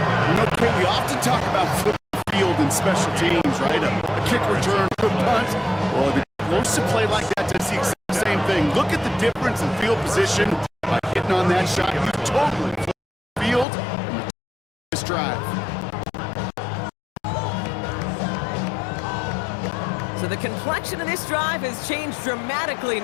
You know, Kate, we often talk about football field and special teams, right? A kick return, a punt. Well, the explosive play like that does the exact same thing. Look at the difference in field position by hitting on that shot. You totally flip the field and this drive. So the complexion of this drive has changed dramatically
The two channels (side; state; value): right; drops out; at 13.7 s